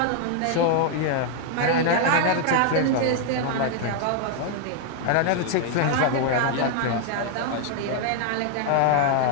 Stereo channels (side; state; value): both; different; correlation 0.00